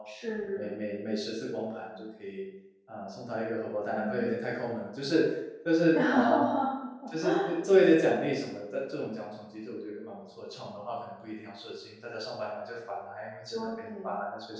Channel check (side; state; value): both; identical; correlation 1.00